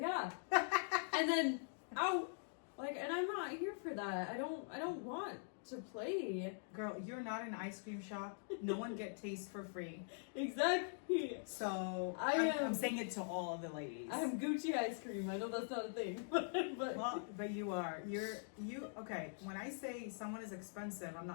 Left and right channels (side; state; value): right; silent; digital silence